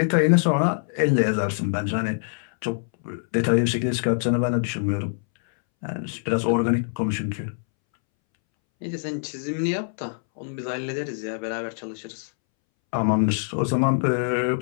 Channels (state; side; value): silent; right; 62 dB below the other